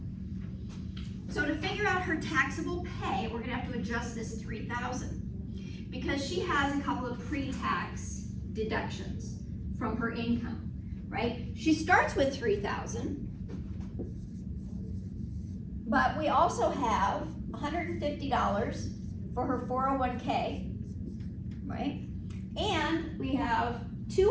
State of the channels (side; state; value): both; identical; correlation 1.00